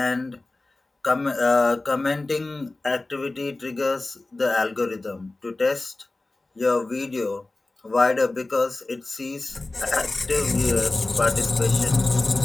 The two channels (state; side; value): quieter; right; 3.0 dB